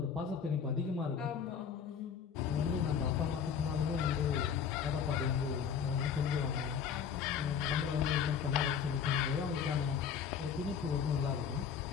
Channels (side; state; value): right; quieter; 7.2 dB